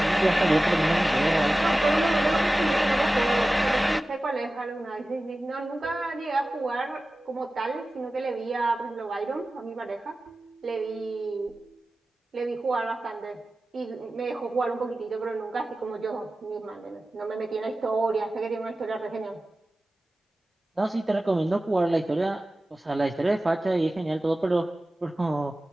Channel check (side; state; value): both; normal; correlation 0.96